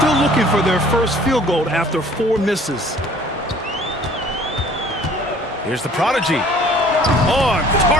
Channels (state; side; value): normal; both; correlation 0.53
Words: looking for their first field goal after 4 misses. Here's the prodigy. On